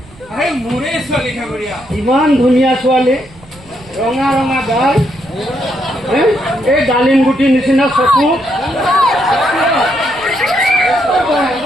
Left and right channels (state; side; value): noise; right; rumble, 23 dB below the sound